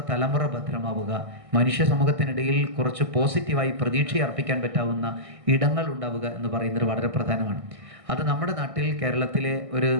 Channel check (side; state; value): left; late; 1.6 ms